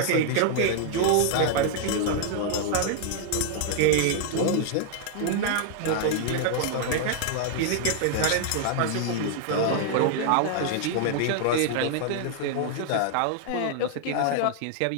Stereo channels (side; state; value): both; different; correlation 0.00